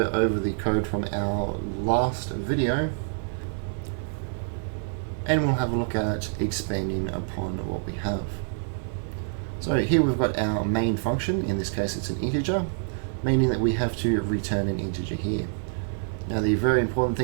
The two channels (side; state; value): left; silent; 58 dB below the other